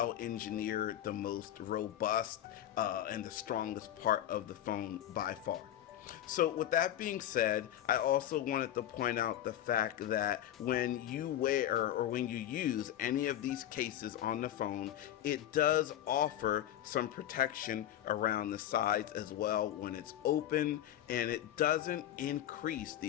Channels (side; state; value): right; quieter; 12.0 dB